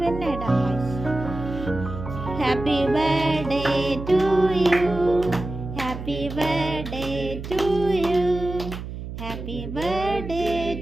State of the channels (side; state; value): right; noise; hum, 9 dB below the sound